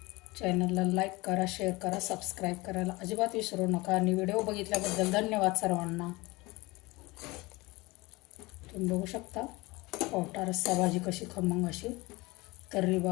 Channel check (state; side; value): quieter; right; 22.6 dB